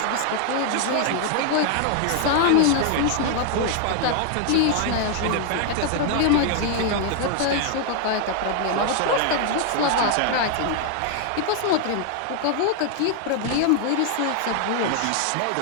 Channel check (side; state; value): both; different; correlation 0.00